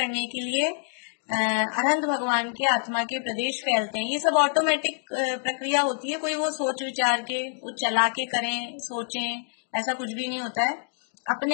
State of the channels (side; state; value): right; silent; digital silence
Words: के लिए अनंत भगवान के आत्मा के प्रदेश फैलते हैं। ये सब ऑटोमेटिक प्रक्रिया होती है, कोई वो सोच विचार के वो चला के करें, सोचें, ऐसा कुछ भी नहीं होता है।